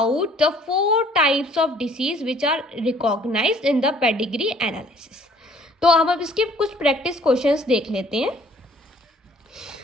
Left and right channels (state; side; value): normal; both; correlation 0.58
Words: the 4 types of disease which are recognized in the pedigree analysis. तो अब इसके कुछ प्रैक्टिस क्वेश्चंस देख लेते हैं.